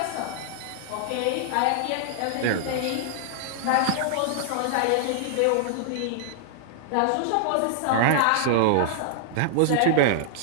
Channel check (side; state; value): both; different; correlation -0.01